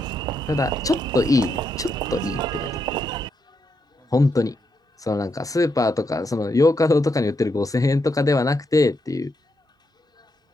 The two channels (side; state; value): both; normal; correlation 0.81